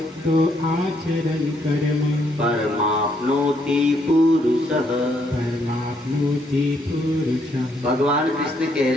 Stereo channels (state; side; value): normal; both; correlation 0.72